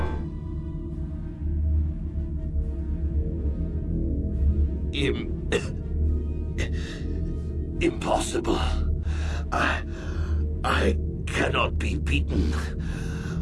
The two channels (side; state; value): both; identical; correlation 1.00